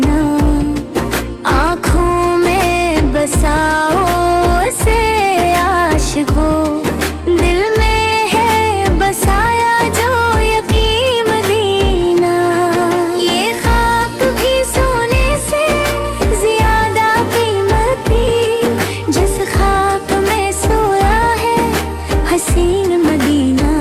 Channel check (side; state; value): both; identical; correlation 1.00